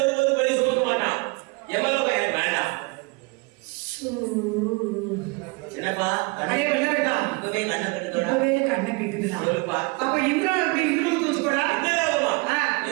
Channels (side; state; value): left; quieter; 28.1 dB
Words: ஒரு படி சுமக்க மாட்டான். எவ்வளவு எனக்கு வேண்டாம். என்னப்பா அடே வெள்ளரக்கா இப்பவே கண்ணை கட்டுதோடா. இப்பவே கண்ணை கேக்குதுடா. சொல்லுப்பா. அப்ப இந்திரனுக்கு இவ்வளவு தூச்சு போடா. இந்த லோகமா